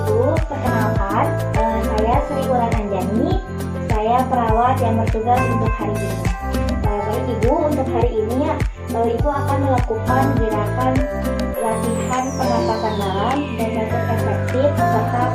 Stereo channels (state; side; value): identical; both; correlation 1.00